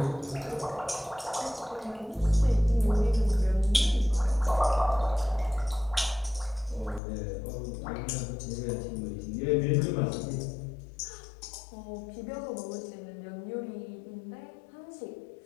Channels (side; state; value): right; drops out; at 7.0 s